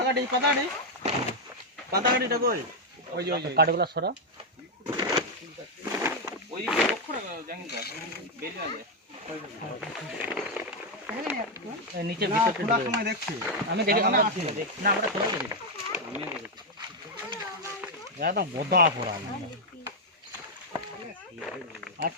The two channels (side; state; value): both; normal; correlation 0.01